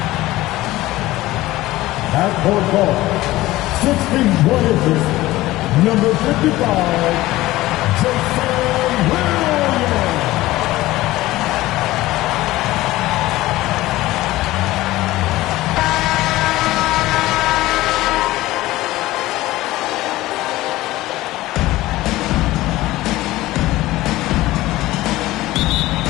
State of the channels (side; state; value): right; quieter; 17.4 dB